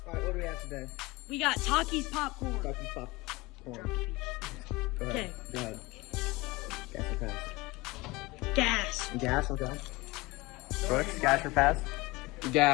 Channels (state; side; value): quieter; right; 22.5 dB